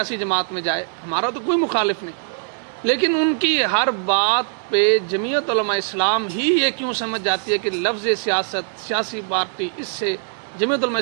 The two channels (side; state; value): left; silent; digital silence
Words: جماعت میں جائے، ہمارا تو کوئی مخالف نہیں، لیکن ان کی ہر بات پہ جمعیت علماء اسلام ہی یہ کیوں سمجھ جاتی ہے کہ لفظ سیاست، سیاسی پارٹی، اس سے جمعیت علماء